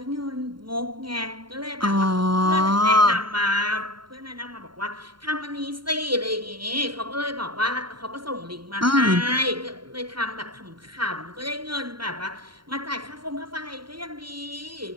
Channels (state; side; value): late; left; 0.73 ms